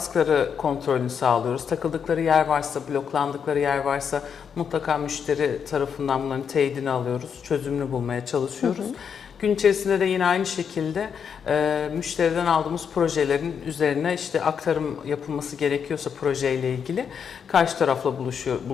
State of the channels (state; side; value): quieter; right; 7.1 dB